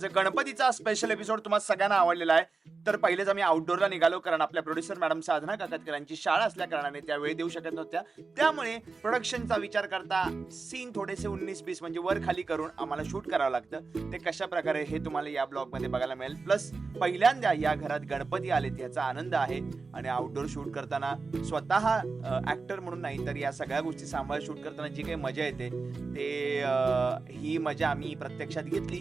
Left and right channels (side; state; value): left; quieter; 4.2 dB